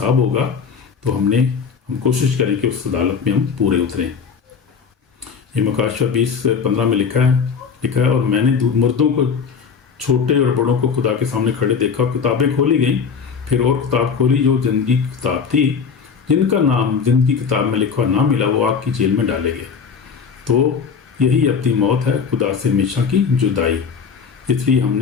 ہوگا تو ہم کوشش کریں کہ اس عدالت میں ہم پورے اتریں. یہ مکاشفہ 20:15 میں لکھا ہے اور میں نے مردوں کو، چھوٹے اور بڑوں کو خدا کے سامنے کھڑے دیکھا، کتابیں کھولی گئیں. پھر اور کتاب کھولی جو زندگی کی کتاب تھی، جن کا نام زندگی کتاب میں لکھا نہ ملا وہ آگ کی جیل میں ڈالے گئے. تو یہی اپنی موت ہے، خدا سے ہمیشہ کی جدائی. اس لیے ہم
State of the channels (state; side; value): quieter; right; 6.0 dB